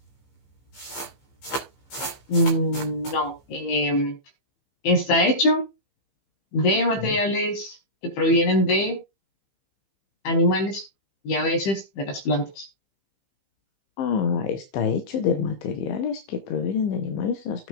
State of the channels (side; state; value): right; late; 15 ms